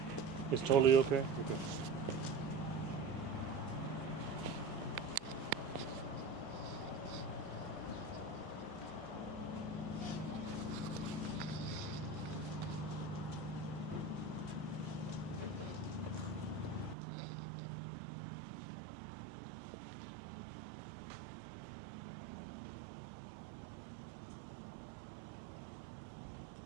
It's totally okay? Okay.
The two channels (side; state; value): left; drops out; at 16.9 s